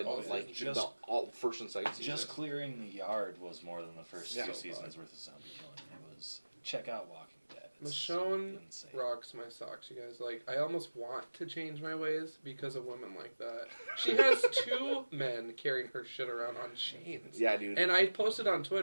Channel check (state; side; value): inverted; both; correlation -1.00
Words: all like season. the all first and second season. Just clearing the yard was more than the first Yeah. two seasons worth of zombie killing. It was check out Walking Dead. It's Michonne insane. rocks my socks, you guys. Like, I almost want to change my ways because of women like that. She has 2 men carrying her shit around on chains. Yeah, dude. And I posted on